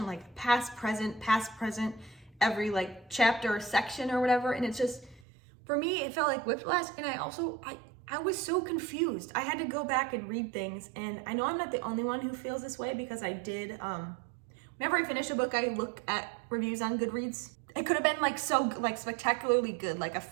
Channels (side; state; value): left; drops out; at 5.2 s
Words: like past, present, every like chapter or section or whatever, and it's just, for me, it felt like whiplash, and I was so confused. I had to go back and read things, and I know I'm not the only one who feels this way because I did, whenever I finish a book, I look at reviews on Goodreads. It could have been like so like spectacularly good, like a